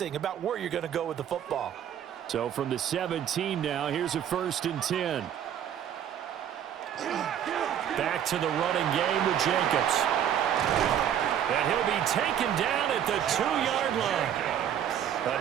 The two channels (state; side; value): quieter; left; 9.7 dB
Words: about where you're going to go with the football. So from the 17 now, here's a 1st and 10. Back to the running game with Jacobs. And he'll be taken down at the 2-yard line.